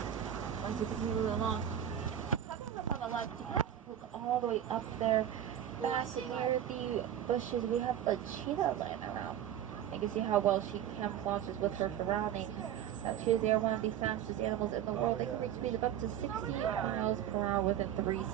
As you can see, moving along. On the left, you have to look all the way up there. Back near the bushes, we have a cheetah laying around. You can see how well she camouflages with her surroundings. Now, cheetahs, they are one of the fastest animals in the world. They can reach speeds of up to 60 miles per hour within 3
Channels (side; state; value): left; quieter; 10.4 dB